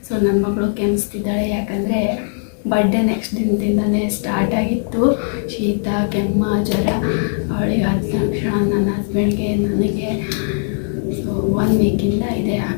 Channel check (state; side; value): silent; right; digital silence